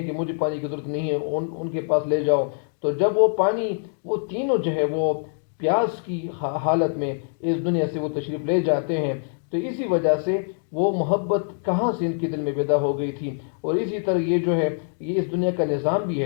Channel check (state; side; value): silent; right; digital silence